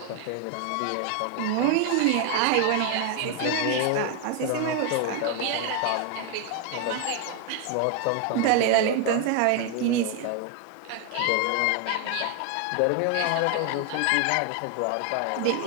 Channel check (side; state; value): both; different; correlation 0.01